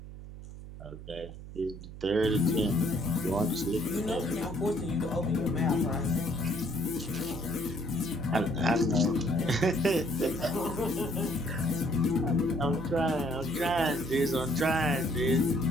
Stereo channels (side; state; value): right; noise; hum, 13 dB below the sound